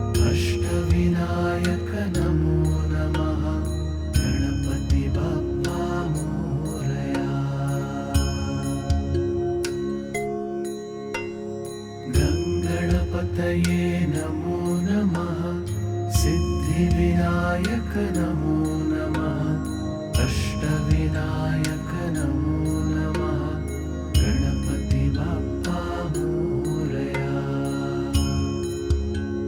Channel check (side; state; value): both; identical; correlation 1.00